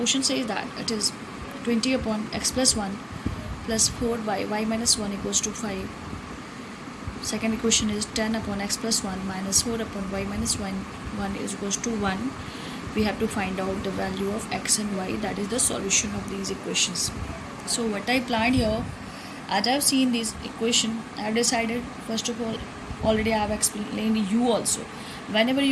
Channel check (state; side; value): identical; both; correlation 1.00